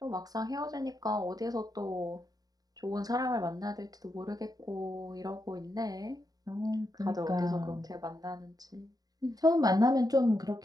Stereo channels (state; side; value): late; left; 0.18 ms